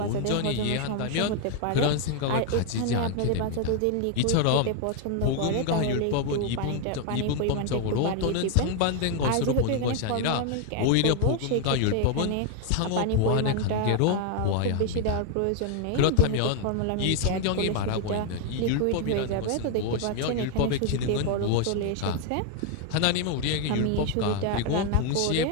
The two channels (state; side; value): different; both; correlation 0.01